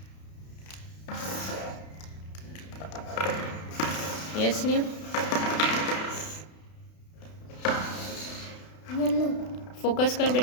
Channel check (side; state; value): right; late; 32 ms